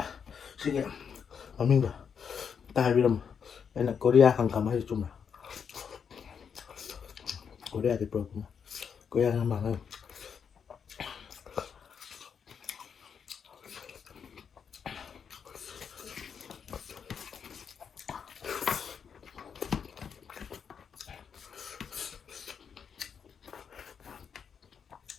ꯁꯤꯒꯤ ꯃꯃꯤꯡꯗꯣ ꯑꯝꯇ ꯍꯥꯏꯕꯤꯔꯝꯃꯣ ꯑꯩꯅ ꯀꯣꯔꯤꯌꯥ ꯍꯪꯒꯥꯝ ꯍꯥꯏꯁꯦ ꯆꯨꯝꯕ꯭ꯔꯥ ꯀꯣꯔꯤꯌꯥꯗꯤ ꯄꯨꯔꯛꯄꯅ ꯀꯣꯔꯤꯌꯥ ꯍꯪꯒꯥꯝ ꯍꯥꯏ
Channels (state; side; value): quieter; right; 6.9 dB